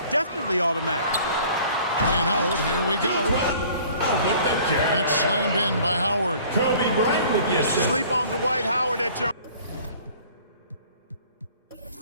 definitely automatic. And Howard, here we go. With the jab. And it's slammed in by Howard. Kobe Bryant with the assist. Sleep on Dwight Howard at your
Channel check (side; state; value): both; inverted; correlation -0.51